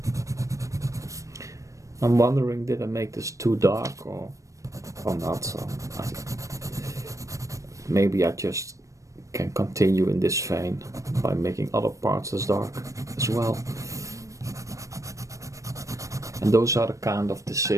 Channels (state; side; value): late; left; 0.15 ms